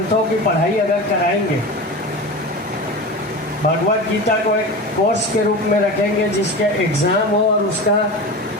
की पढ़ाई अगर कराएंगे, भगवत गीता को एक कोर्स के रूप में रखेंगे जिसके एग्ज़ाम हो और उसका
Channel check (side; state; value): both; normal; correlation 0.28